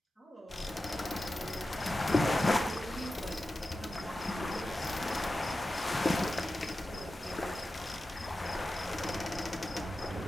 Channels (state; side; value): normal; both; correlation 0.93